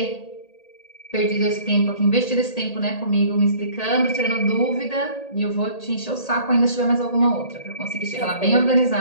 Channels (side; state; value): right; late; 1.8 ms